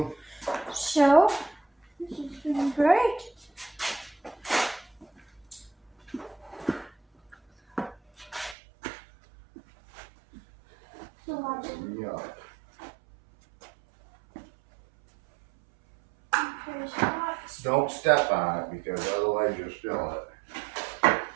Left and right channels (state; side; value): drops out; left; at 8.6 s